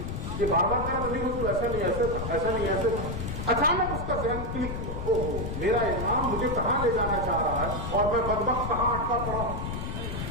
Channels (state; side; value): noise; left; rumble, 4 dB below the sound